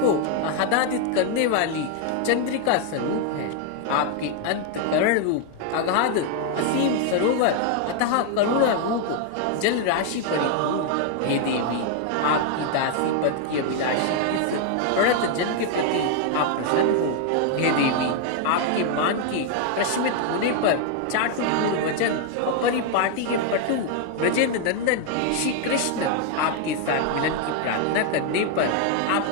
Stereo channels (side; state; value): both; different; correlation 0.00